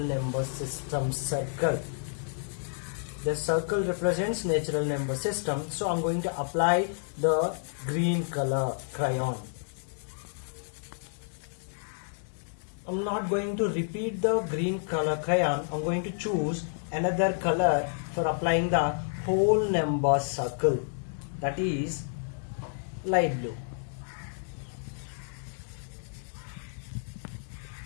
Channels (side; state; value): right; silent; digital silence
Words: system circle. The circle represents natural number system, so I'm going to apply the green color crayon. I'm not going to repeat the green color crayon. I'm going to choose another color for applying the whole number circle, that is light blue.